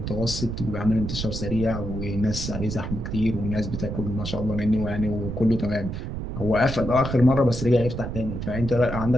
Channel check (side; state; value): right; noise; rumble, 5 dB below the sound